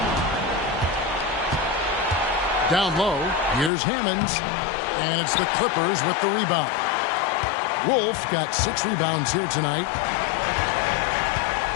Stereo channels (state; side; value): drops out; right; at 3.7 s